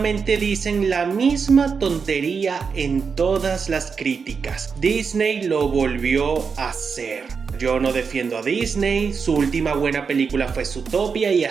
dicen la misma tontería en todas las críticas. Disney lo volvió a hacer. Yo no defiendo a Disney, su última buena película fue Zootopia y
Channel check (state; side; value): quieter; left; 5.6 dB